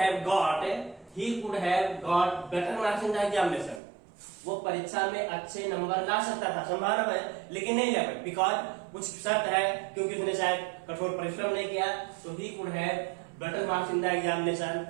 got better marks in the examination. वो परीक्षा में अच्छे नंबर ला सकता था, संभावना है, लेकिन नहीं ला पाया बिकॉज कुछ शर्त है, क्योंकि उसने शायद कठोर परिश्रम नहीं किया। तो he could have better marks in the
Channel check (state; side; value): drops out; left; at 3.8 s